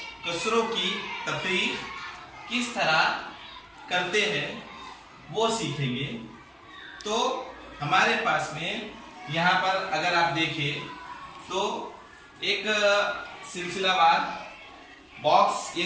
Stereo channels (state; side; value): identical; both; correlation 1.00